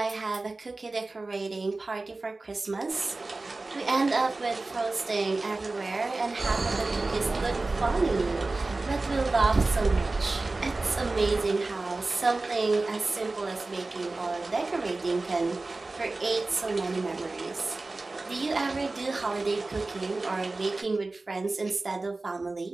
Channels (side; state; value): left; quieter; 3.3 dB